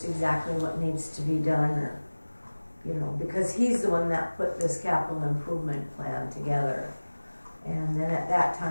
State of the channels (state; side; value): inverted; both; correlation -1.00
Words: exactly what needs to be done, or, you know, because he's the one that put this capital improvement plan together. And then at that